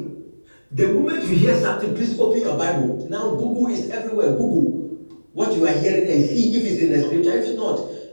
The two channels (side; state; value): both; inverted; correlation -1.00